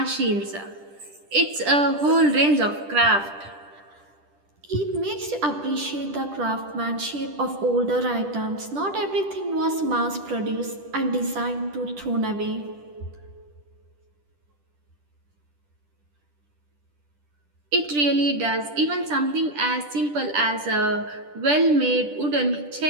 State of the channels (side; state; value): left; late; 10 ms